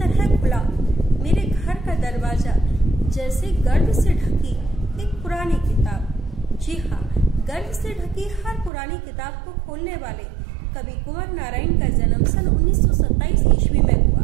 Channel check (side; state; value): left; drops out; at 8.7 s